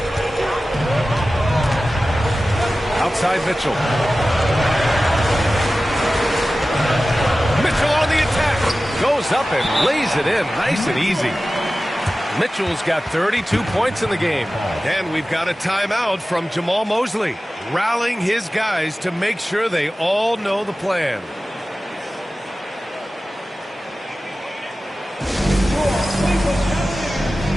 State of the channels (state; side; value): normal; both; correlation 0.96